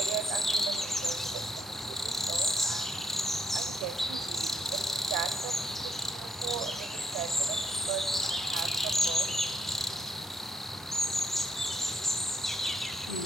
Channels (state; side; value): normal; both; correlation 0.75